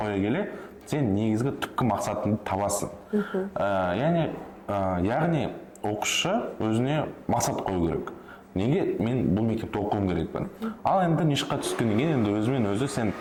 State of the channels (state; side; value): identical; both; correlation 1.00